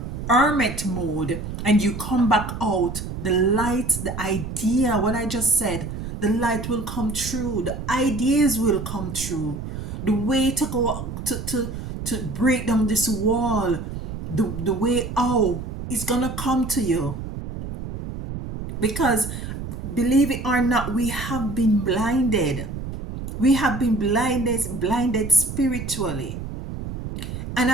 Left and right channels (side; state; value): right; noise; rumble, 7 dB below the sound